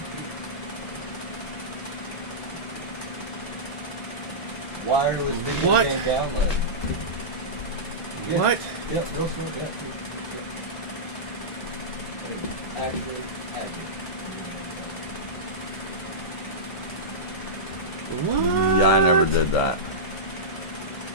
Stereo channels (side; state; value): both; normal; correlation -0.14